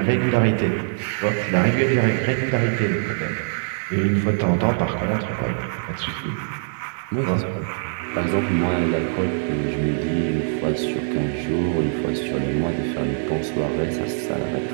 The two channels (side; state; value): left; silent; digital silence